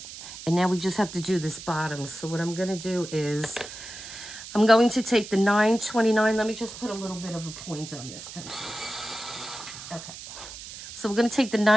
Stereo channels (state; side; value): noise; right; hiss, 12 dB below the sound